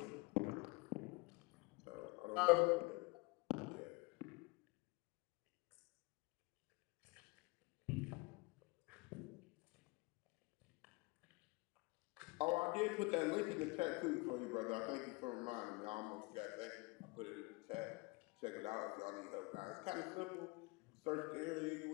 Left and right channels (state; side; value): quieter; right; 26.2 dB